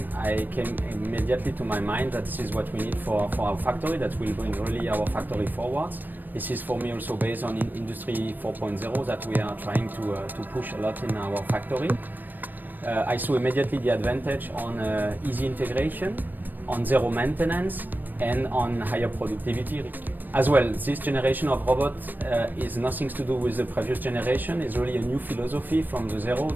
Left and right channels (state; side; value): late; left; 0.090 ms